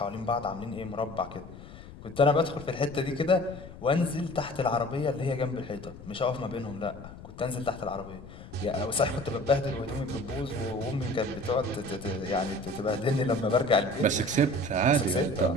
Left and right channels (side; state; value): left; noise; rumble, 16 dB below the sound